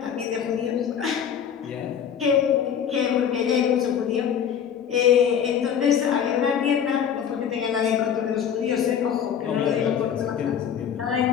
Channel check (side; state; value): right; quieter; 8.4 dB